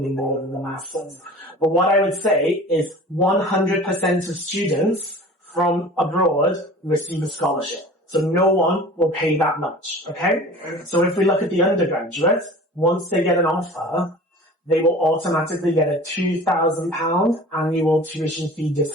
more than the Masters. But what I would say is 100% of students from abroad receive a scholarship. So no one will pay that much, okay? So if we look at the undergraduate, once they get an offer, they will automatically get a £2,000 annual tuition fee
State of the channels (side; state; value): both; normal; correlation 0.41